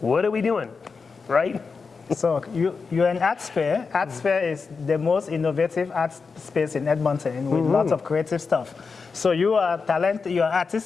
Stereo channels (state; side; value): quieter; right; 4.9 dB